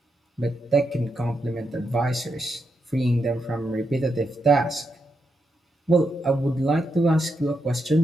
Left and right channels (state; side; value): normal; both; correlation 0.83